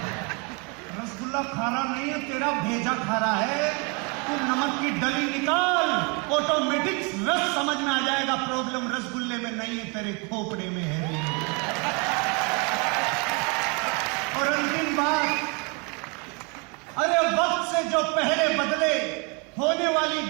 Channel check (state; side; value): quieter; left; 32.2 dB